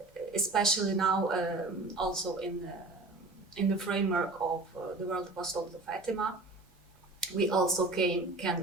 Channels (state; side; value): quieter; left; 3.2 dB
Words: especially now, also in the framework of the World Apostolate of Fatima, we also can